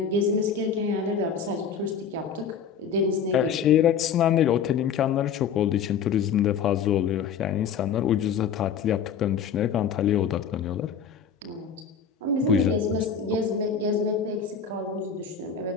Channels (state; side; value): quieter; right; 6.9 dB